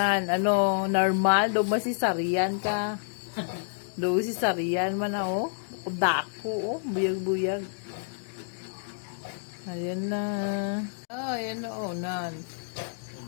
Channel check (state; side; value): silent; right; digital silence